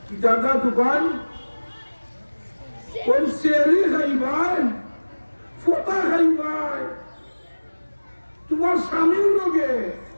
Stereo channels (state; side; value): inverted; both; correlation -1.00